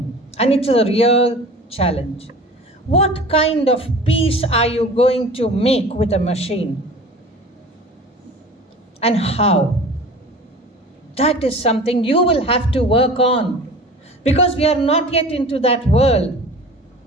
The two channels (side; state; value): both; normal; correlation 0.40